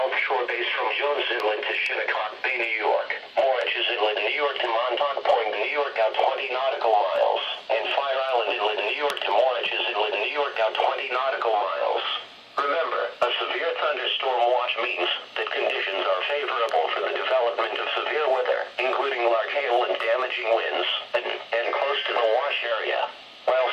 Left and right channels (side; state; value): both; identical; correlation 1.00